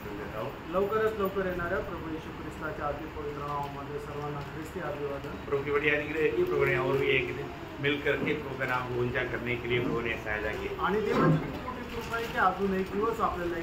सुन देता हूँ। लवकरच लवकर येणाऱ्या प्रभू येशू ख्रिस्ताच्या अति पवित्र नावामध्ये सर्वांना ख्रिस्ती अभिवादन। प्रभु की बड़ी अनुग्रह है कि प्रभु ने और भी एक दिन मिलकर के प्रभु का नाम को ऊंचा करने के लिए प्रभु ने सहायता की आणि देवाची खूप मोठी कृपा आहे की अजून एक दिवस आपल्याला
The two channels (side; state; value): both; identical; correlation 1.00